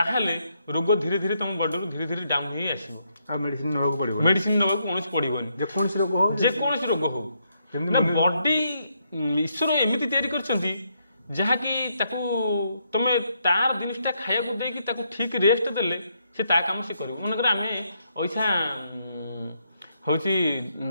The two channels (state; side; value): inverted; both; correlation -0.77